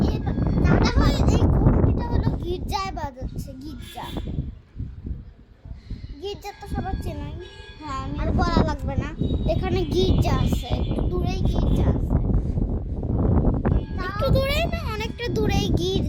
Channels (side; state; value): both; identical; correlation 1.00